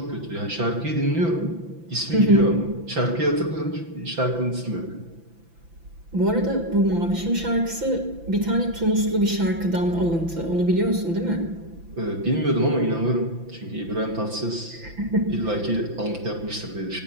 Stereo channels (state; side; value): late; left; 5.9 ms